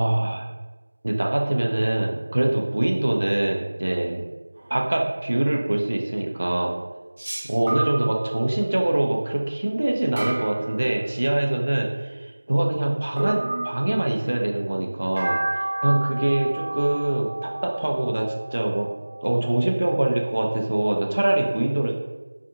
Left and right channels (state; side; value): inverted; both; correlation -1.00